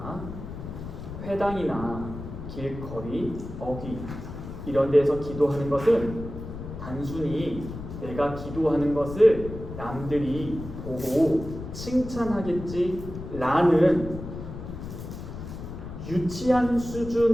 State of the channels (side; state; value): left; noise; rumble, 10 dB below the sound